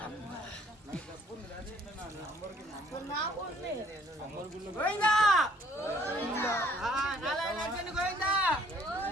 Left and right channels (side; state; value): both; normal; correlation 0.61